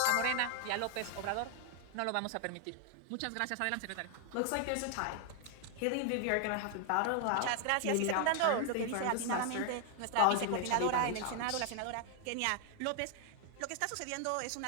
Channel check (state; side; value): different; both; correlation 0.00